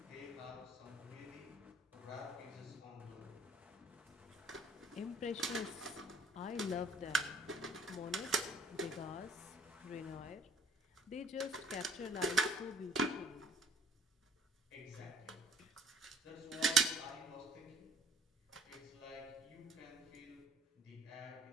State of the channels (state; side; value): normal; both; correlation 0.57